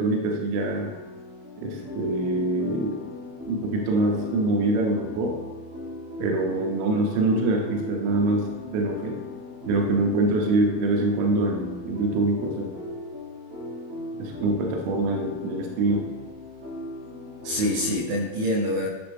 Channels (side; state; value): left; late; 28 ms